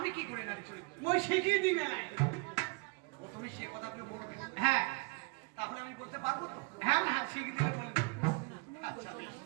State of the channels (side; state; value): left; quieter; 30.8 dB